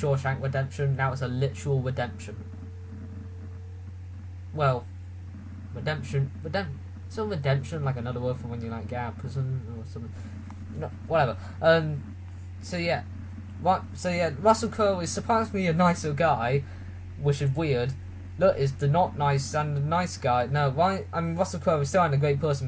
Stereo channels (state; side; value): identical; both; correlation 1.00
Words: Redemption, that was a literal redemption. Well, redemption, so redemption, like another word for when you like get out of prison or something. No, whatever. Russell Crowe is surprisingly a nicer guy, which is weird. Look, is the not nice and the nice guy. No, Russell Crowe is still a great person